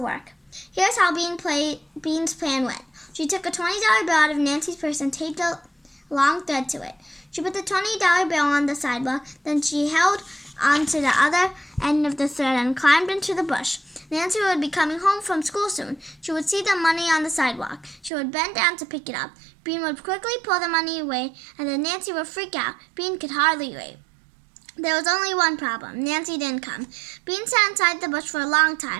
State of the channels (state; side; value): drops out; left; at 18.1 s